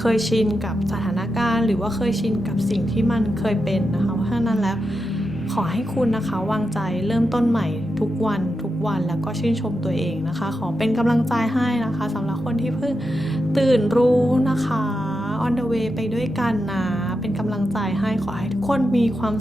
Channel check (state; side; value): normal; both; correlation 0.88